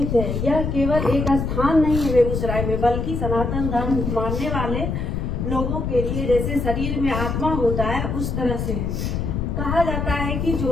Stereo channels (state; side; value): noise; left; rumble, 2 dB below the sound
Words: है। यह केवल एक स्थान नहीं है बेगूसराय में, बल्कि सनातन धर्म मानने वाले लोगों के लिए जैसे शरीर में आत्मा होता है उस तरह से है। कहा जाता है कि